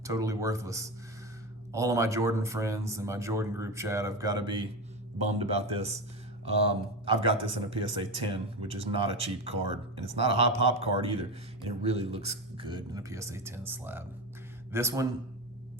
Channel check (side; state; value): both; normal; correlation 0.19